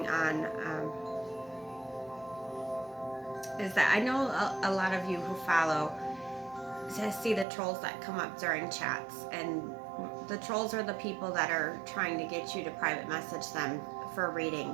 on is that I know a lot of you who follow to see the trolls that come up during chats, and the trolls are the people that are trying to get you to private message them for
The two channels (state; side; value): drops out; left; at 7.5 s